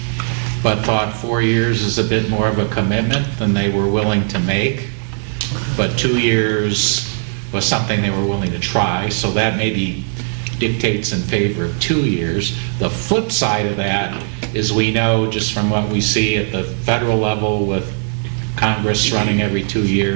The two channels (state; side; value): silent; left; 67 dB below the other